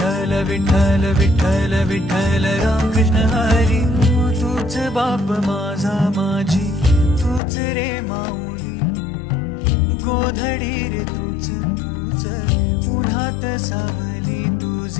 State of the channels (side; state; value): right; drops out; at 7.4 s